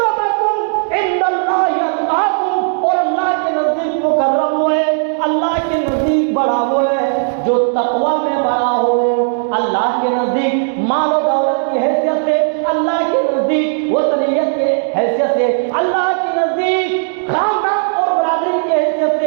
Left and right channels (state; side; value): silent; left; digital silence